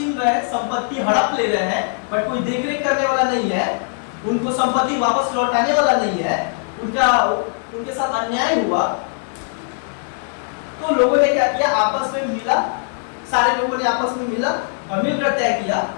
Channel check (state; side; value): silent; right; 66 dB below the other